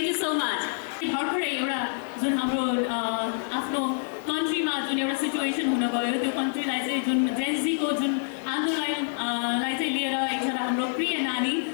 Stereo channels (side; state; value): right; silent; digital silence